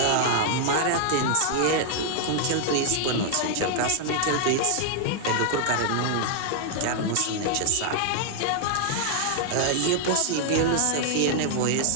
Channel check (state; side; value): different; both; correlation 0.00